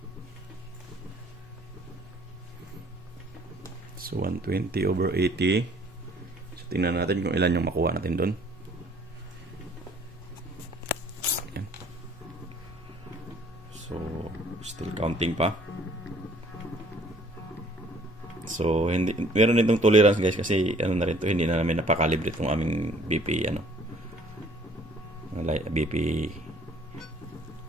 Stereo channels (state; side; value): normal; both; correlation 0.57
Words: So 120/80. So tingnan natin kung ilan yung makuha natin doon. Ayan. So still counting pa. So hindi meron itong tolerance guys kasi ano na rin to, hindi na namin napakalibre itong aming BP BP